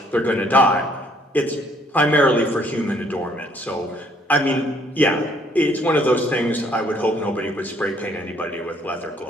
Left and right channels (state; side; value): normal; both; correlation 0.64